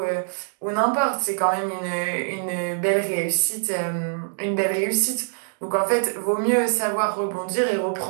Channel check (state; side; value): silent; left; digital silence